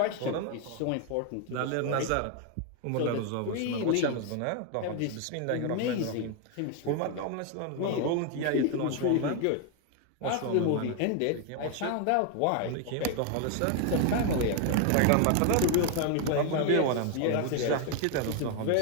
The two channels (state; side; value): different; both; correlation 0.01